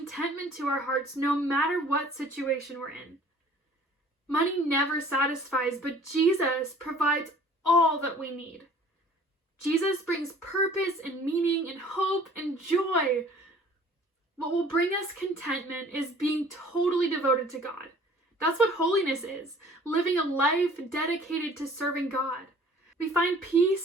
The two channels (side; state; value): both; normal; correlation 0.51